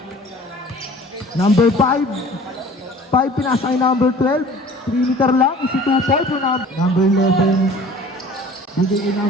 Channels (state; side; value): normal; both; correlation 0.47